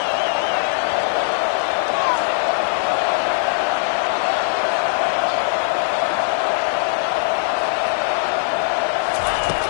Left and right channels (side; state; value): right; silent; 59 dB below the other